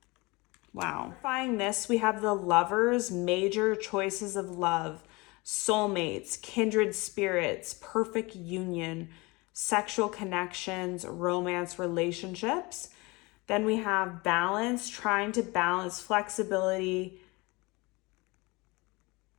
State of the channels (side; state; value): right; quieter; 24.9 dB